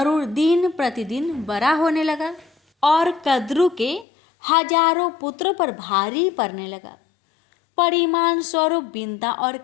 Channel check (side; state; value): right; drops out; at 4.0 s